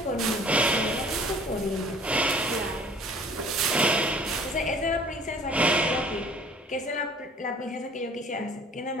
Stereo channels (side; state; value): both; normal; correlation 0.52